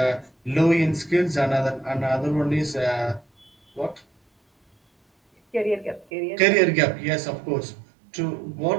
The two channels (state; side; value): drops out; left; at 6.1 s